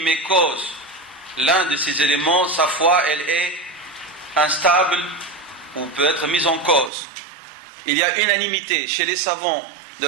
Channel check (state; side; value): drops out; left; at 6.9 s